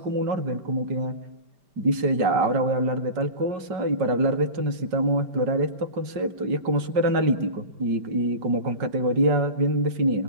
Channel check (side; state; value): left; late; 5.1 ms